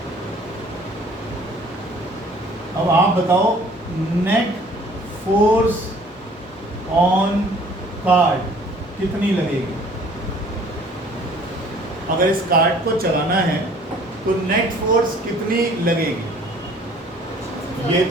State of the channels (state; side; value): normal; both; correlation 0.54